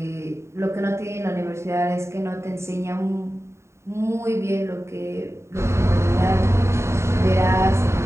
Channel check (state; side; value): late; left; 0.13 ms